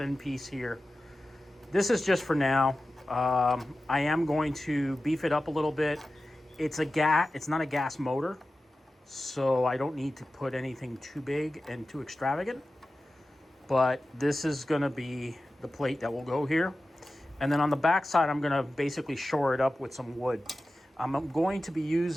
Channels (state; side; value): normal; both; correlation 0.94